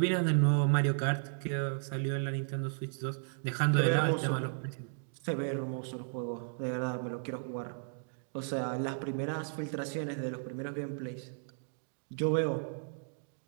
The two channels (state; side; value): silent; left; digital silence